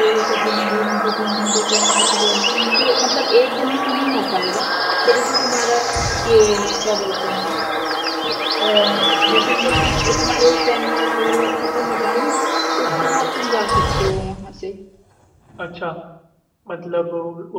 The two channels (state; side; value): identical; both; correlation 1.00